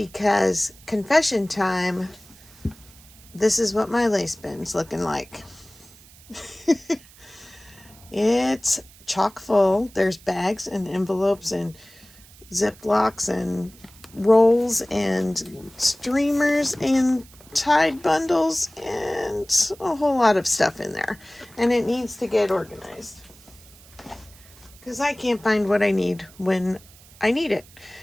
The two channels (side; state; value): right; noise; hiss, 24 dB below the sound